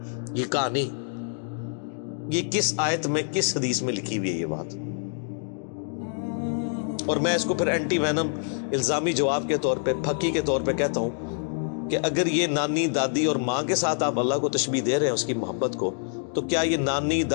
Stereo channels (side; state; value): right; silent; digital silence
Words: یہ کہانی، یہ کس آیت میں، کس حدیث میں لکھی ہوئی ہے یہ بات؟ اور میں اس کو پھر اینٹی وینم الزامی جواب کے طور پہ، پھکی کے طور پہ کہتا ہوں کہ اگر یہ نانی دادی اور ماں کے ساتھ آپ اللہ کو تشبیہ دے رہے ہیں اس کی محبت کو، تو کیا یہ نانی